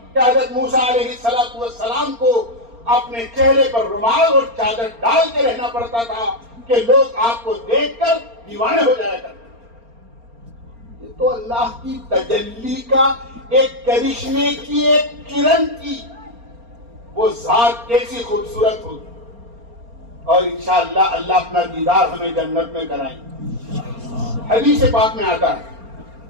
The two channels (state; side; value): late; left; 4.3 ms